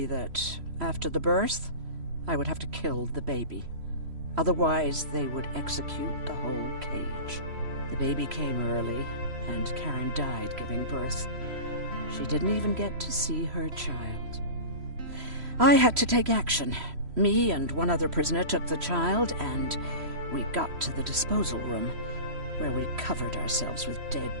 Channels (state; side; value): late; left; 3.0 ms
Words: that after the birth, I would have to kill the baby. Otherwise, they would execute the whole cage. The baby came early, and Karen died giving birth. She didn't even get to see her child. I had to take action. Me and one other prisoner took the child, and we got to the disposal room, where we covered ourselves with dead